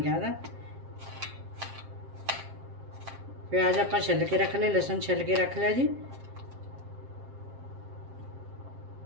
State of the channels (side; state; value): left; late; 7.5 ms